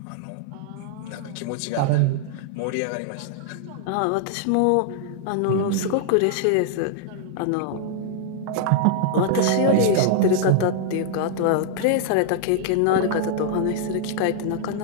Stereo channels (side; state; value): both; different; correlation -0.01